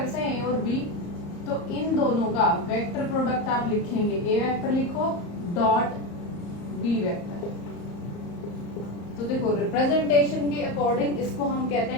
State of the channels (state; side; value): late; right; 34 ms